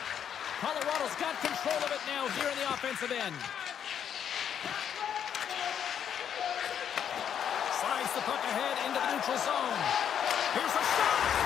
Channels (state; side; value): quieter; right; 8.7 dB